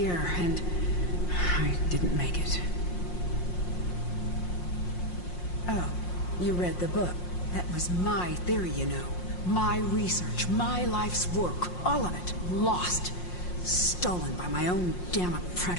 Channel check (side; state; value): right; late; 5.6 ms